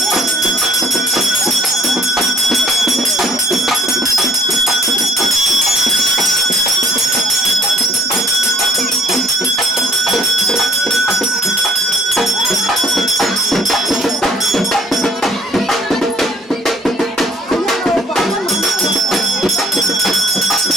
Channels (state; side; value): normal; both; correlation 0.59